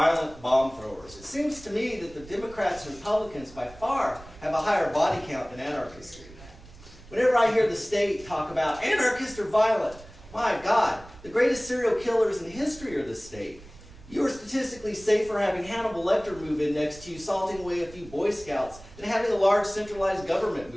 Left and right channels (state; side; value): noise; right; rumble, 20 dB below the sound